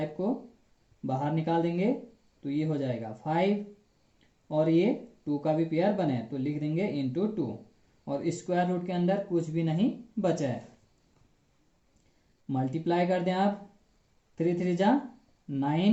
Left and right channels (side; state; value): both; identical; correlation 1.00